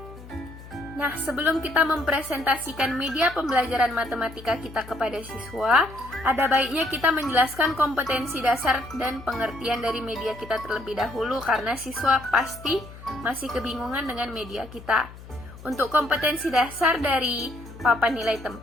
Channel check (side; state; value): left; noise; hum, 17 dB below the sound